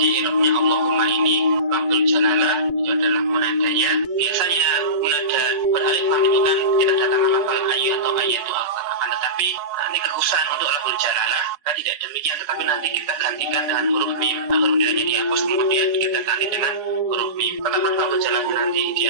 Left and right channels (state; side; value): late; left; 4.7 ms